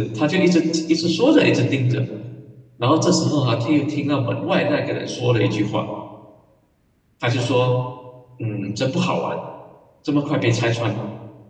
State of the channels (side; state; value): both; identical; correlation 1.00